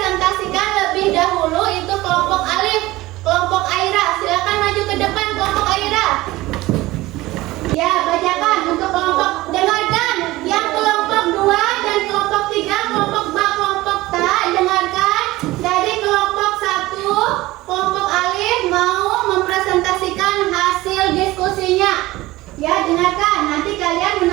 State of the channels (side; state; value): left; quieter; 18.6 dB